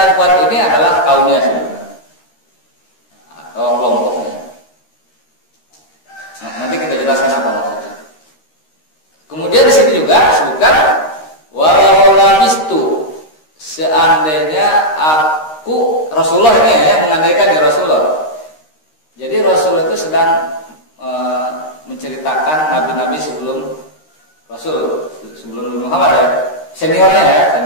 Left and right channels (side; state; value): right; late; 13 ms